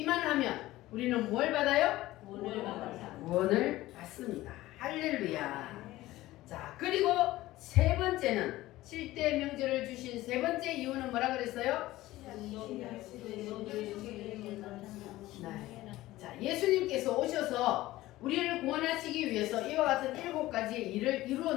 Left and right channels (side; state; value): right; quieter; 16.9 dB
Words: 하면 우리는 뭘 받아요? 구원을 받습니다. 할렐루야. 자, 그리고 세 번째는 7대 명절을 주신 세 번째 이유는 뭐라 그랬어요? 네. 자, 예수님께서 오셔서 우리를 구원하시기 위해서 이와 같은 7가지의 일을 이루어